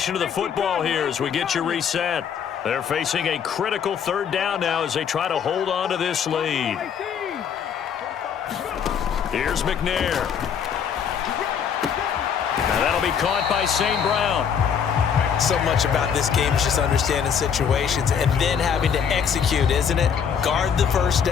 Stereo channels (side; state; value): right; quieter; 7.5 dB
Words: of the football here as we get you reset. They're facing a critical 3rd down now as they try to hold on to this lead. Here's McNair. Now that'll be caught by St. Brown. So much about this game is just understanding situations and then having to execute, isn't it? Guard the first